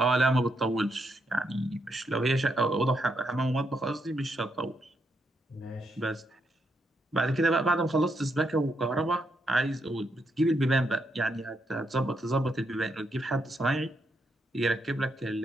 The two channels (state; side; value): normal; both; correlation 0.79